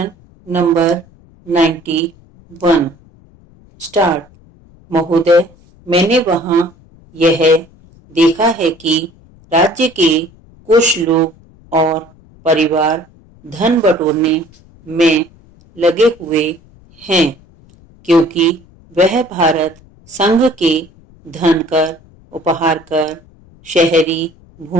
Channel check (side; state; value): left; noise; rumble, 27 dB below the sound